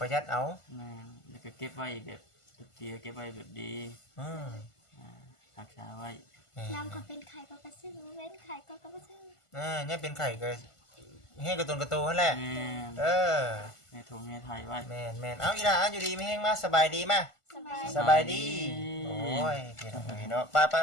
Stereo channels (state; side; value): late; right; 1.5 ms